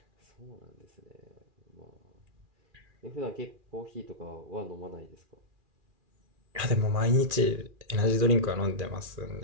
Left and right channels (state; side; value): late; left; 2.4 ms